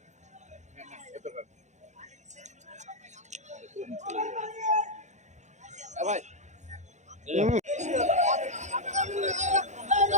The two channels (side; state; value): left; late; 0.34 ms